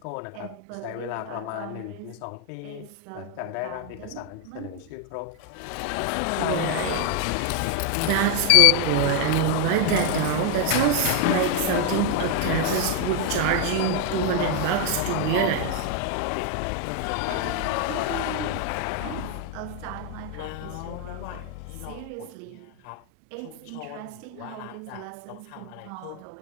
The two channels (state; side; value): different; both; correlation 0.01